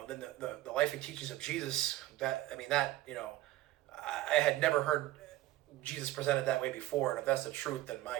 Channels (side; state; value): left; quieter; 16.0 dB